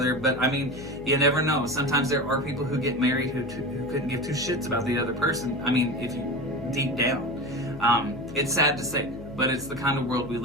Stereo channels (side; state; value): left; noise; hum, 13 dB below the sound